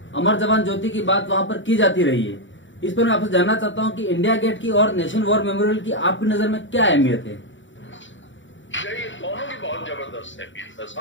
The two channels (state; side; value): late; right; 0.55 ms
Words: अमर जवान ज्योति की बात वहां पर की जाती रही है, इस पर मैं आपसे जानना चाहता हूं कि इंडिया गेट की और नेशनल वॉर मेमोरियल की आपकी नजर में क्या अहमियत है? ये दोनों की बहुत जबरदस्त अहमियत है